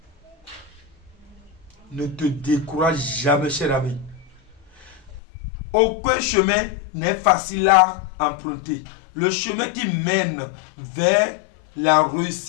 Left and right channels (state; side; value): drops out; right; at 5.2 s